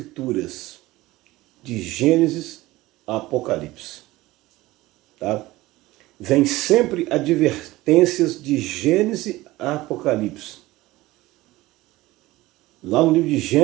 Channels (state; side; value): quieter; left; 18.4 dB